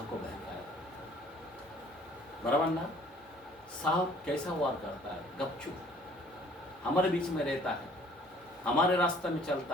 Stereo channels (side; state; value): both; normal; correlation 0.56